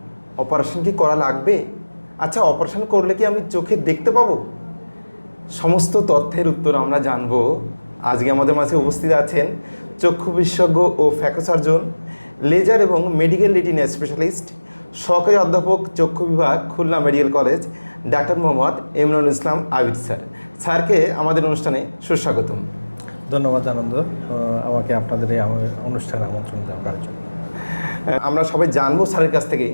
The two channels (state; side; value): inverted; both; correlation -1.00